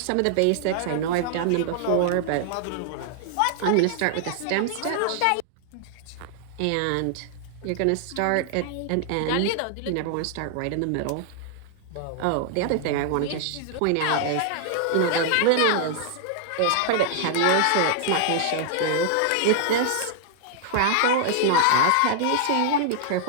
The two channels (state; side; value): different; both; correlation -0.01